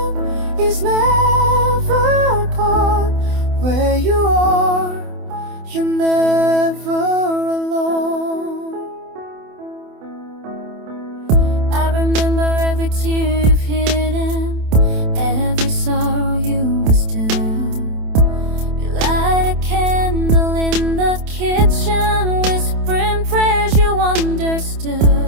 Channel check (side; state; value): left; late; 27 ms